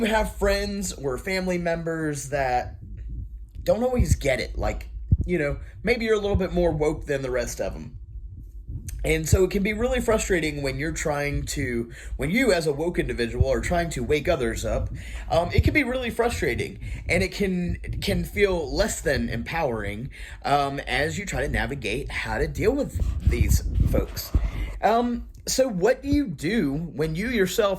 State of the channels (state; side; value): identical; both; correlation 1.00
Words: have friends or family members that don't always get it. Like, maybe you're a little bit more woke than the rest of them. And so it can be really frustrating when you as a woke individual are trying to wake others up. It can be really frustrating, and it can feel less than empowering as you try to navigate how to deal with these folks. So what do you do when you